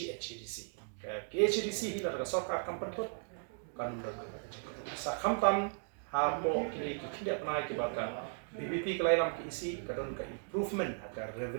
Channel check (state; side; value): silent; left; 53 dB below the other